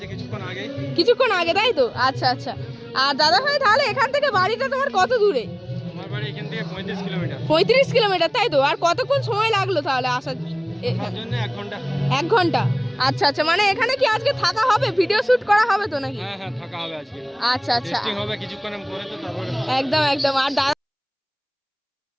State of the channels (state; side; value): identical; both; correlation 1.00